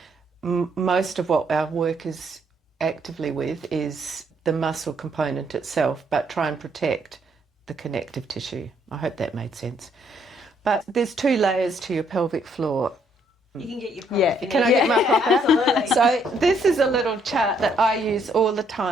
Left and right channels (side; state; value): both; normal; correlation 0.70